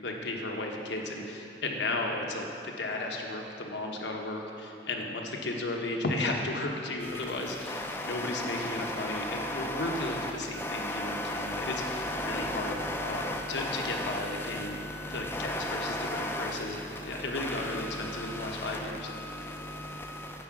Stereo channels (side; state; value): both; normal; correlation 0.30